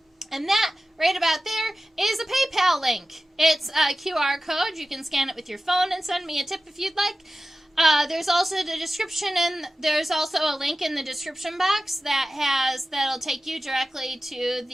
And that right about there is a PayPal link. It's a QR code. You can scan it with your phone and send me a tip if you'd like. There's also the description, and there's also a link in the description box that'll take you directly to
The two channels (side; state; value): both; normal; correlation 0.94